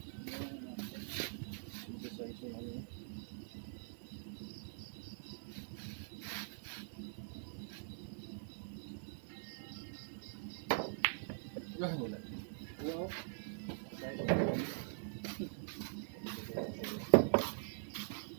Wala mo na. Wow.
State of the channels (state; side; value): silent; left; digital silence